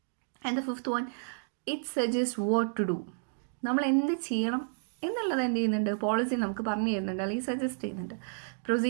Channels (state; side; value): silent; left; digital silence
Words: And the fifth one, it suggest what to do. നമ്മൾ എന്ത് ചെയ്യണം എന്നുള്ളത് എന്ത് ചെയ്യുന്നുണ്ട്? പോളിസി നമുക്ക് പറഞ്ഞു തരുന്നുണ്ട്, അല്ലെങ്കിൽ സജസ്റ്റ് ചെയ്യുന്നുണ്ട്.